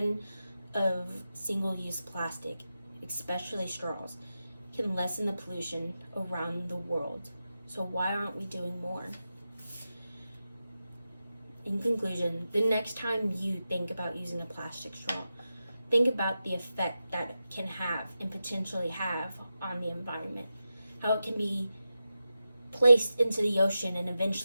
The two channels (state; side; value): inverted; both; correlation -0.91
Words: of single-use plastic, especially straws, can lessen the pollution around the world. So why aren't we doing more? In conclusion, the next time you think about using a plastic straw, think about the effect that it can have and potentially have on the environment. How it can be placed into the ocean and